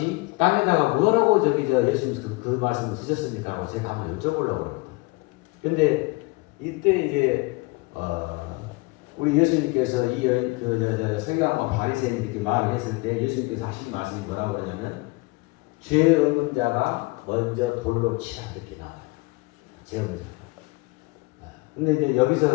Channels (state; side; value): quieter; right; 25.2 dB